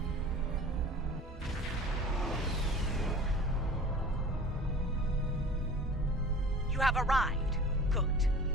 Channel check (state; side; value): normal; both; correlation 0.41